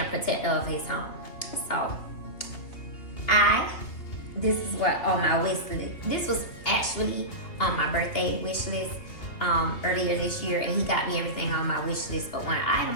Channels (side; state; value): right; late; 2.9 ms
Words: protector of his home. So this is what on my wish list. This was actually on my birthday wish list earlier this year, and he got me everything on my wish list but one